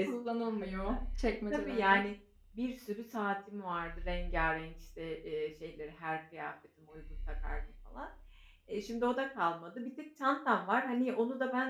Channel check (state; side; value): identical; both; correlation 1.00